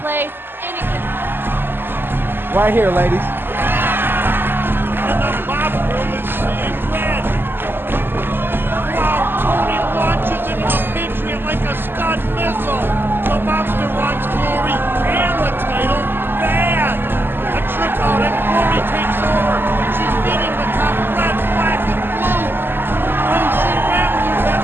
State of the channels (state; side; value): late; left; 0.099 ms